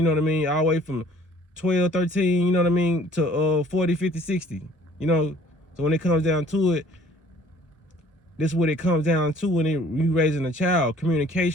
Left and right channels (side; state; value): both; normal; correlation 0.55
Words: know what I mean? All the way from 12, 13, you know what I mean, to 40, 50, 60, you know? So when it comes down to it, this is what it comes down to when you raising a child,